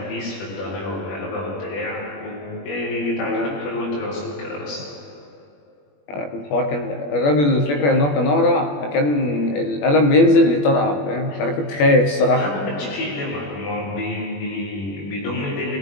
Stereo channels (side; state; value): right; late; 21 ms